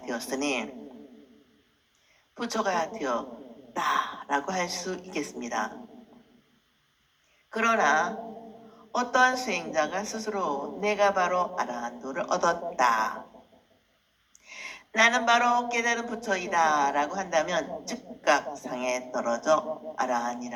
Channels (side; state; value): both; identical; correlation 1.00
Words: 되었으니 부처가 되었다라고 할 수 있겠습니다. 그러나 어떠한 수행자가 스스로 내가 바로 아라한도를 얻었다, 나는 바로 깨달은 부처이다 라고 한다면 즉각 상에 떨어져